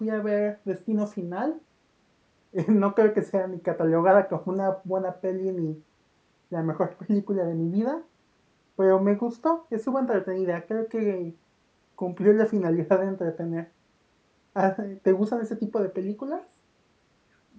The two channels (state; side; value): identical; both; correlation 1.00